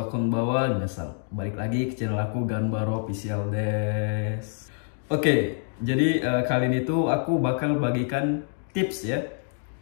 konbanwa, minasan. Balik lagi ke channel aku Ganbaro Official des. Oke, jadi kali ini tuh aku bakal bagikan tips ya.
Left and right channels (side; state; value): right; silent; digital silence